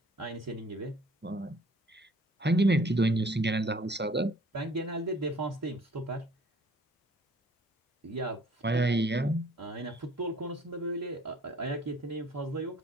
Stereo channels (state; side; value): normal; both; correlation 0.56